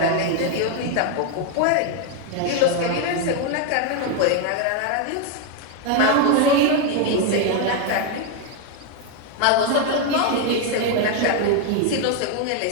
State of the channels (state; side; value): different; both; correlation 0.01